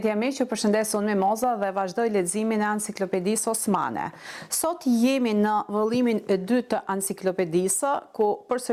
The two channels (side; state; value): both; identical; correlation 1.00